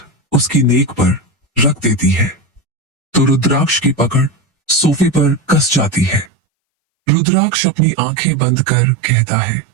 उसकी नेक पर रख देती है तो रुद्राक्ष की पकड़ सोफे पर कस जाती है। रुद्राक्ष अपनी आंखें बंद कर कहता है,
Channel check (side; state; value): left; drops out; at 6.3 s